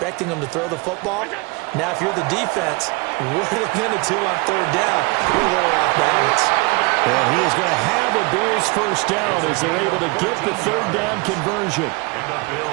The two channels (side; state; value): left; quieter; 26.9 dB